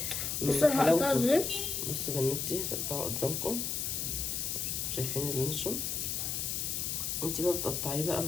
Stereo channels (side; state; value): left; noise; hiss, 1 dB below the sound